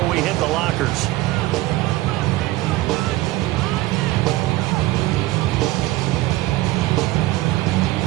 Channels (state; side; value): quieter; left; 18.1 dB